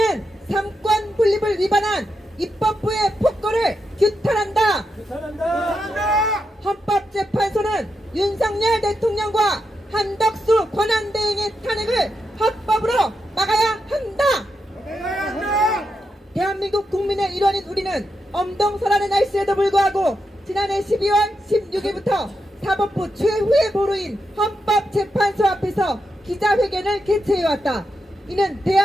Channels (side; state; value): both; normal; correlation 0.85